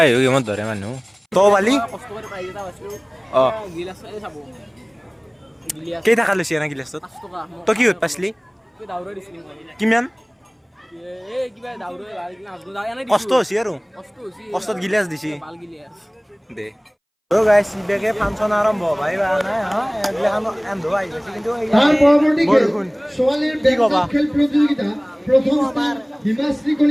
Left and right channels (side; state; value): both; identical; correlation 1.00